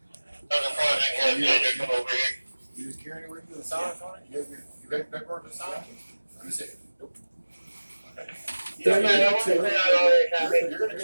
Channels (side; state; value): both; inverted; correlation -1.00